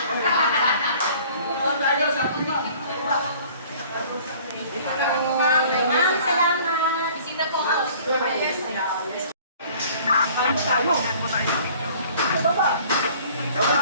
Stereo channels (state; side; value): inverted; both; correlation -0.51